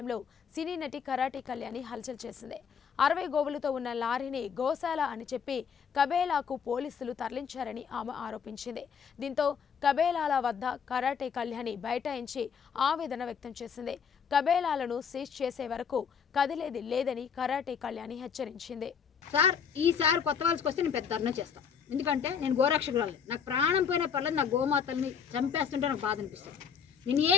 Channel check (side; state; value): right; quieter; 7.0 dB